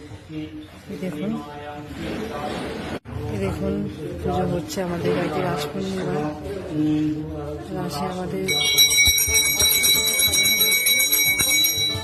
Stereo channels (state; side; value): identical; both; correlation 1.00